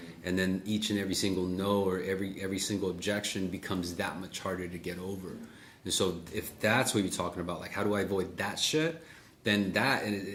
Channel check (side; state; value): both; identical; correlation 1.00